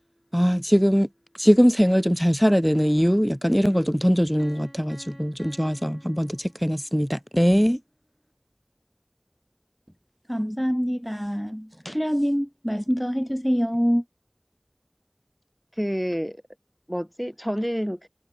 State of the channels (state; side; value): identical; both; correlation 1.00